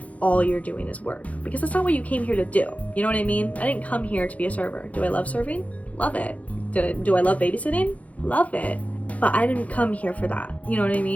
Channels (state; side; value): late; right; 0.068 ms